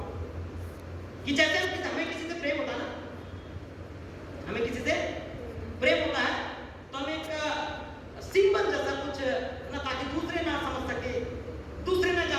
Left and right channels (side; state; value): both; identical; correlation 1.00